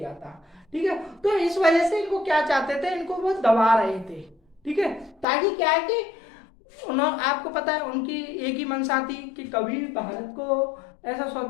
था। ठीक है, तो इस वजह से इनको क्या चाहते थे, इनको वो दबा रहे थे। ठीक है, ताकि क्या है कि आपको पता है उनकी एक ही मंशा थी कि कभी भारत को ऐसा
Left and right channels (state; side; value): drops out; right; at 5.2 s